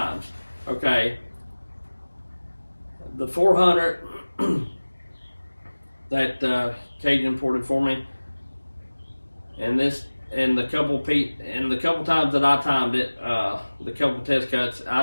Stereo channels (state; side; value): inverted; both; correlation -1.00